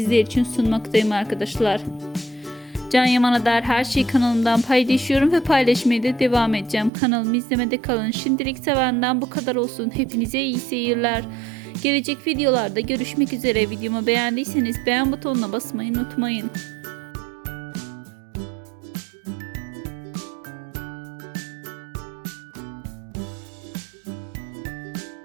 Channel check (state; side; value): drops out; left; at 6.9 s